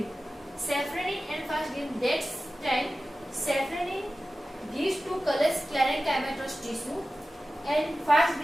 Safranin and fast green. That time safranin gives to color sclerenchymatous tissue and fast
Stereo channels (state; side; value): normal; both; correlation 0.95